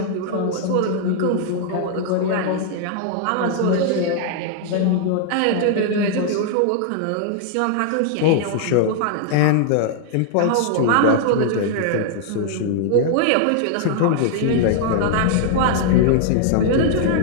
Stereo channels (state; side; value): different; both; correlation 0.00